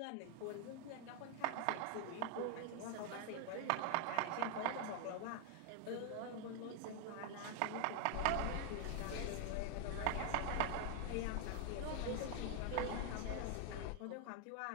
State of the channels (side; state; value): both; different; correlation 0.00